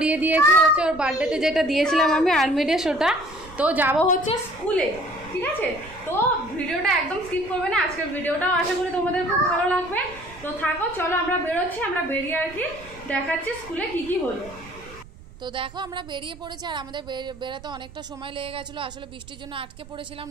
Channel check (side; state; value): right; noise; rumble, 19 dB below the sound